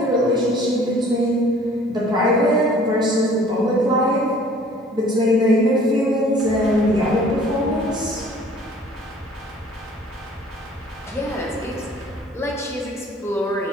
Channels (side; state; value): both; normal; correlation 0.52